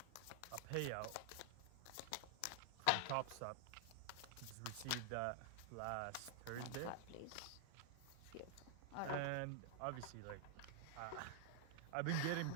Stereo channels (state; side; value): different; both; correlation 0.00